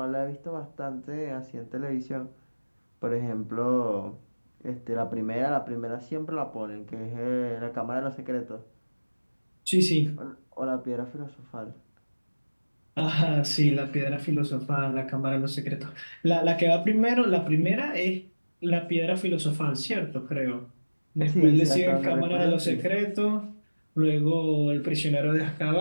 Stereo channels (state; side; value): inverted; both; correlation -1.00